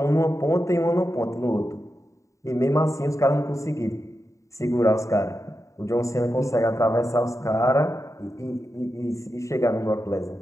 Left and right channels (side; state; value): right; late; 0.15 ms